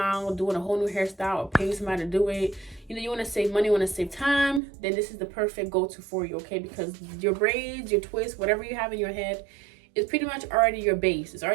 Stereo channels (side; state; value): left; drops out; at 4.6 s